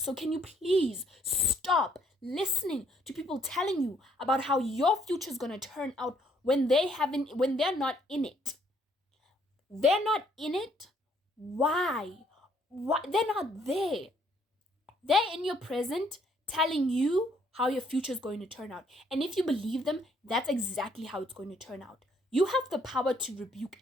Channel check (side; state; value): both; normal; correlation 0.67